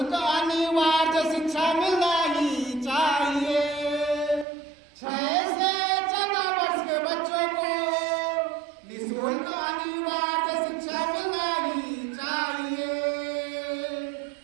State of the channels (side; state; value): left; drops out; at 4.5 s